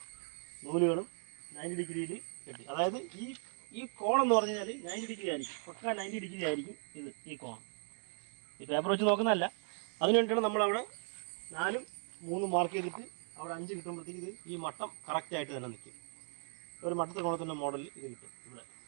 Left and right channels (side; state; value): left; silent; 53 dB below the other